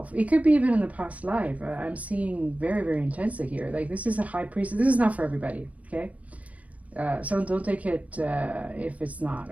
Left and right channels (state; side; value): late; left; 0.068 ms